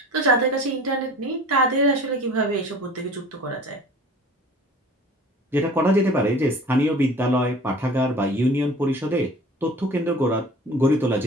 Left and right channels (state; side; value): normal; both; correlation 0.44